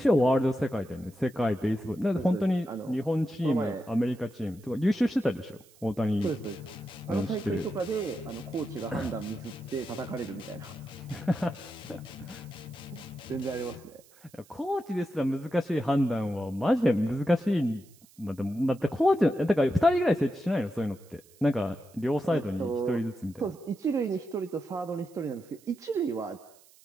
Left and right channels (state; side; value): noise; right; hiss, 27 dB below the sound